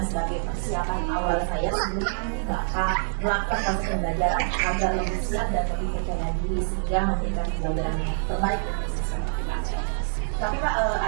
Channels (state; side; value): silent; left; 61 dB below the other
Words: sebagai persiapan awal saya sebelum Bapak melakukan proses pembelajaran agar lebih siap dan lebih percaya diri sehingga memberikan pembelajaran yang terbaik untuk siswa. Tapi Pak,